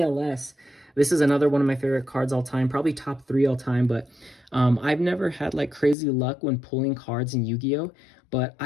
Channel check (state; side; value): drops out; right; at 6.0 s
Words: This is another one of my favorite cards all time, probably top 3 all time, but I've never had like crazy luck when pulling cards in Yu-Gi-Oh! But